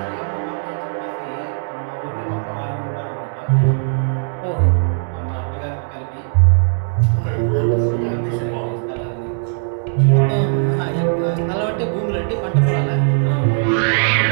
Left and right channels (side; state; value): left; silent; 66 dB below the other